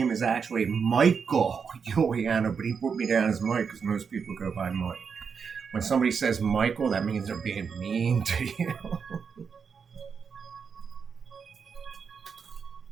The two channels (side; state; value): left; quieter; 6.1 dB